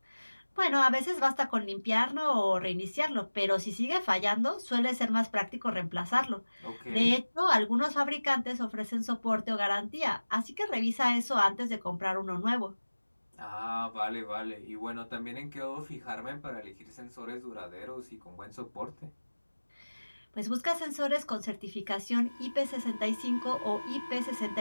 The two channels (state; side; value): inverted; both; correlation -1.00